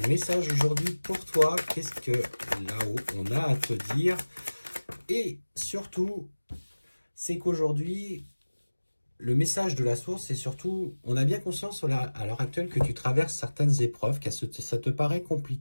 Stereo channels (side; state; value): both; inverted; correlation -1.00